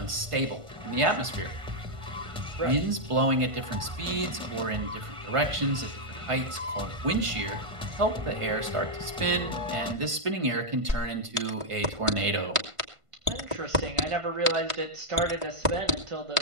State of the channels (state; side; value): late; left; 1.5 ms